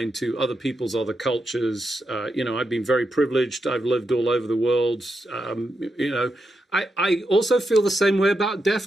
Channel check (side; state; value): both; normal; correlation 0.85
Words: to other people's other cultures. I've been very privileged. I've lived all over the world. I also feel the same way about DEF